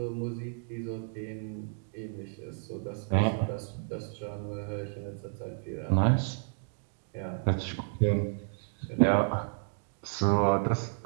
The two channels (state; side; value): silent; left; digital silence